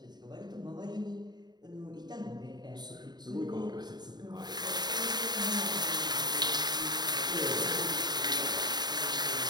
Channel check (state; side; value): late; left; 0.20 ms